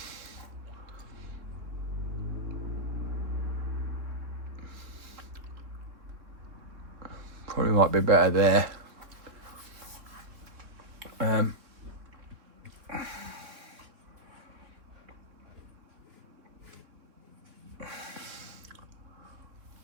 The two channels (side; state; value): left; late; 3.6 ms